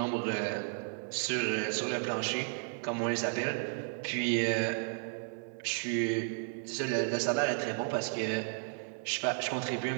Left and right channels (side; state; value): left; silent; 55 dB below the other